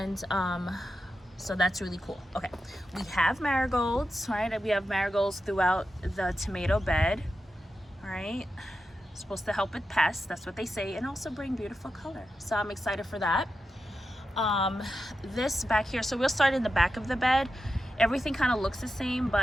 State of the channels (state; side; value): normal; both; correlation 0.90